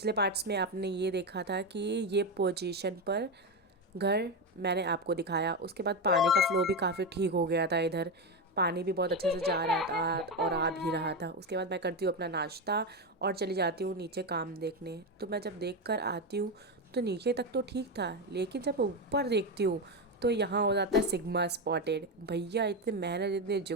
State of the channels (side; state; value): both; normal; correlation 0.12